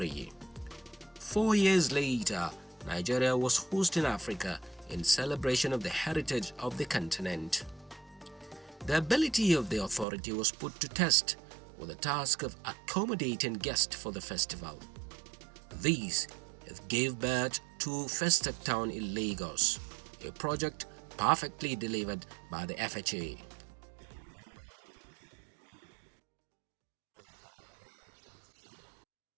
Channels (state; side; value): drops out; left; at 10.1 s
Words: 4 years later, Nigeria was hosting Africa in celebration of the heritage of the continent. The ability of the authority was put to test with the task of accommodating guests for the festival. These gave birth to First Stack Town in Lagos, a project perfectly delivered by the FHA. If you remember vividly, during the First Stack 77,